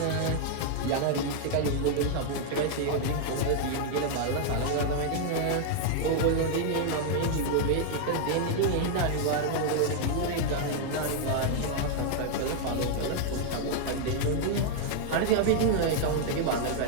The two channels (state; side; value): different; both; correlation 0.00